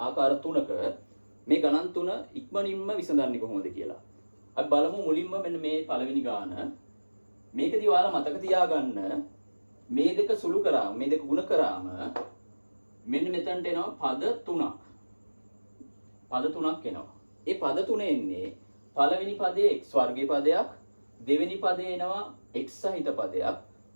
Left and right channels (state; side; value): inverted; both; correlation -1.00